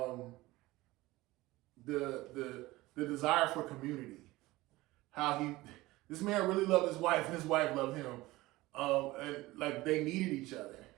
The desire for community. How this man really loved his wife and his wife loved him. And like they needed each other.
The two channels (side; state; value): left; quieter; 19.2 dB